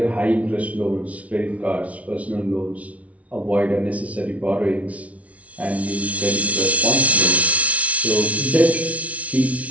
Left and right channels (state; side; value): late; left; 0.066 ms